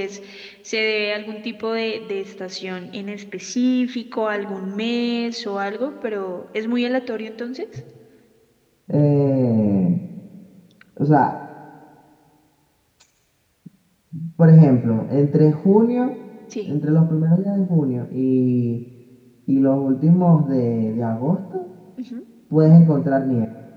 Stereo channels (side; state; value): both; identical; correlation 1.00